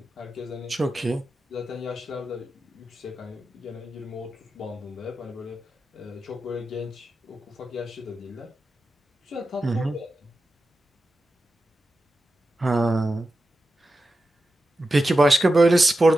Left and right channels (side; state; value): both; normal; correlation 0.91